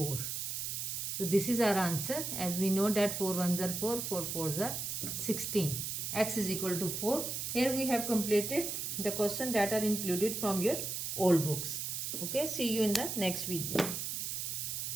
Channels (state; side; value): noise; right; hiss, 3 dB below the sound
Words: So this is our answer, as we know that 4 1s are 4, 4 4s are 16. X is equal to 4. Here we have completed the questions that are included from your old books. Okay, see you in the next video.